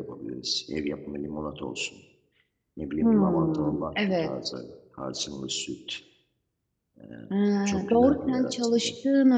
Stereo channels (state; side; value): identical; both; correlation 1.00